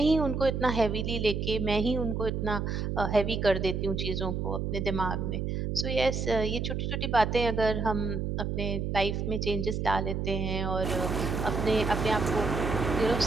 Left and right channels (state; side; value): noise; right; hum, 1 dB below the sound